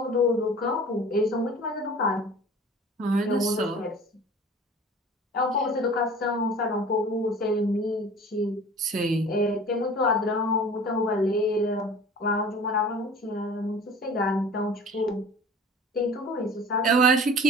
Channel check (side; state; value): both; normal; correlation 0.43